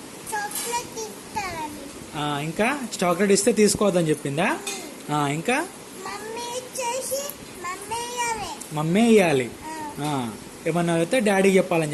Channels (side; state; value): both; identical; correlation 1.00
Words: ఇంకా చాక్లెట్ ఇస్తే తీసుకోవద్దని చెప్పిందా? ఇంకా మమ్మీ ఇయ్యాలి. ఏమన్నా అయితే డాడీకి చెప్పాలని